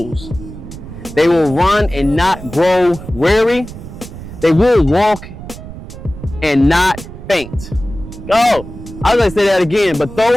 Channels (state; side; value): noise; right; rumble, 13 dB below the sound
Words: They will run and not grow weary. They will walk and not faint. Oh, I was going to say that again. But